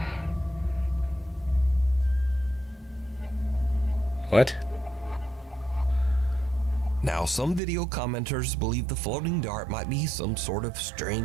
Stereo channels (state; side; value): drops out; left; at 7.6 s